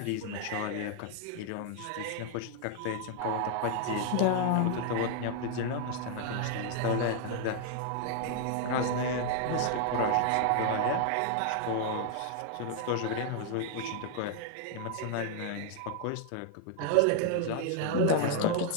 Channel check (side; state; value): both; different; correlation 0.00